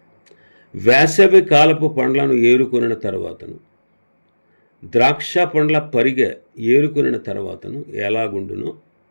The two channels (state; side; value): inverted; both; correlation -1.00